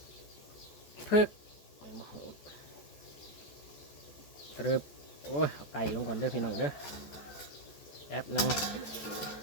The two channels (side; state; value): right; late; 14 ms